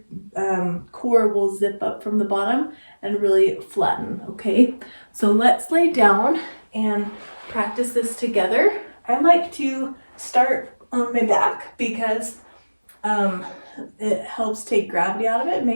core will zip up from the bottom and really flatten, okay? So let's lay down and practice this together. I like to start on my back because it helps take gravity out of it,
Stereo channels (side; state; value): both; inverted; correlation -1.00